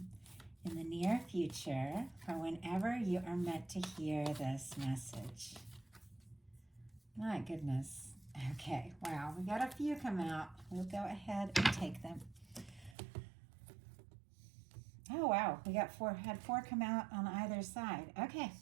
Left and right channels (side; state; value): left; drops out; at 13.0 s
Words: in the near future for whenever you are meant to hear this message? My goodness. Okay, wow, we got a few come out. We'll go ahead and take them. Oh, wow, we got had four come out on either side. Okay,